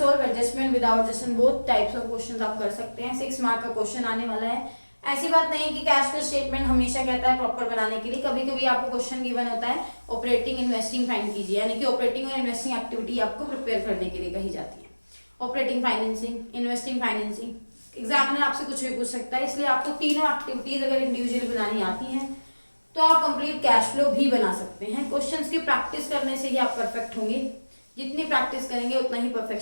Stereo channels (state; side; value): inverted; both; correlation -1.00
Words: adjustment without adjustment both types of question आप कर सकते हैं। 6 मार्क का क्वेश्चन आने वाला है। ऐसी बात नहीं है कि कैश फ्लो स्टेटमेंट हमेशा कहता है प्रॉपर बनाने के लिए, कभी कभी आपको क्वेश्चन गिवन होता है ऑपरेटिंग इन्वेस्टिंग फाइंड कीजिए, यानी कि ऑपरेटिंग और इन्वेस्टिंग एक्टिविटी आपको प्रिपेयर करने के लिए कही जाती है। Operating financing, investing financing, examiner आपसे कुछ भी पूछ सकता है, इसलिए आपको तीनों एक्टिविटीज अगर इंडिविजुअली बनानी आती हैं तो आप कंप्लीट कैश फ्लो भी बना सकते हैं। क्वेश्चंस की प्रैक्टिस करने से ही आप परफेक्ट होंगे, जितनी प्रैक्टिस करेंगे उतना ही